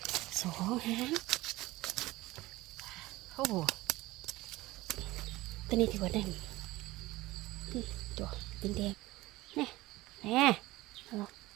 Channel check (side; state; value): left; quieter; 18.7 dB